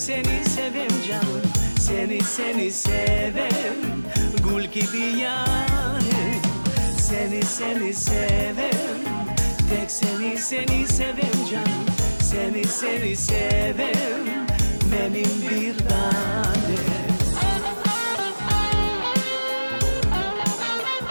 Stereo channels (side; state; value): both; inverted; correlation -1.00